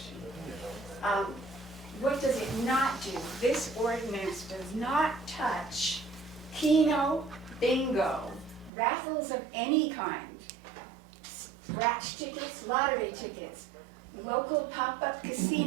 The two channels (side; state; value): left; drops out; at 8.7 s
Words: What does it not do? This ordinance does not touch Keno, bingo, raffles of any kind, scratch tickets, lottery tickets, local pop-up